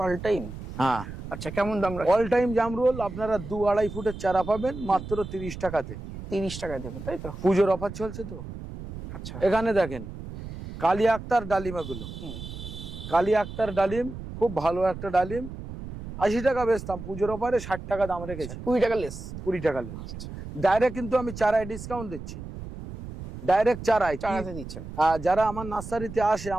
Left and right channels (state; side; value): noise; right; rumble, 10 dB below the sound